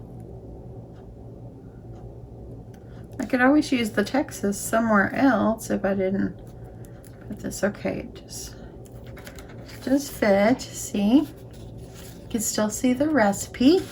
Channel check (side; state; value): both; identical; correlation 1.00